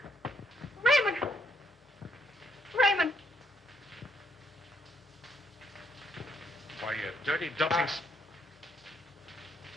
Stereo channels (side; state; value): both; normal; correlation 0.73